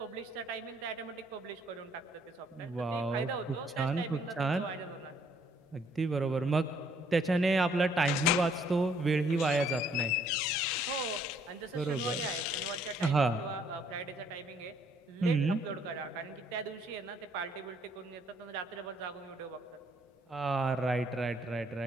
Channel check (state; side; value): normal; both; correlation 0.65